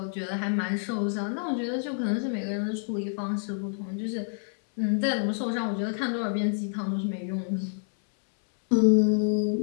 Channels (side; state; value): right; silent; 59 dB below the other